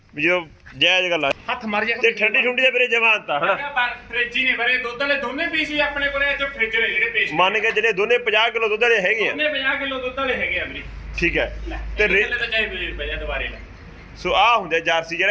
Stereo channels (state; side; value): identical; both; correlation 1.00